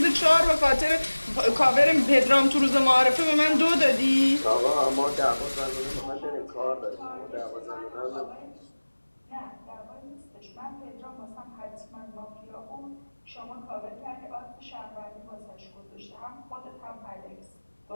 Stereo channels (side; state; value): both; inverted; correlation -1.00